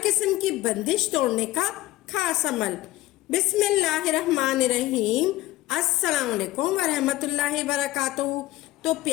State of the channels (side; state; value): right; quieter; 17.2 dB